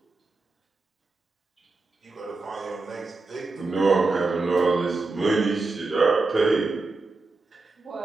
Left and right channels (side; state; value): left; quieter; 3.6 dB